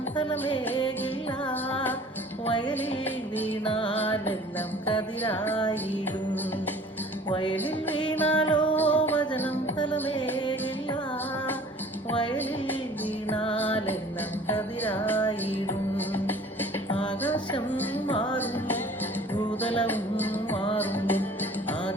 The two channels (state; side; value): normal; both; correlation 0.48